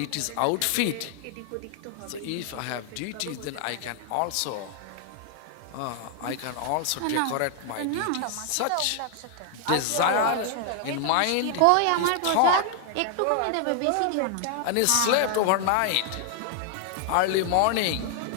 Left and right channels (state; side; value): different; both; correlation 0.00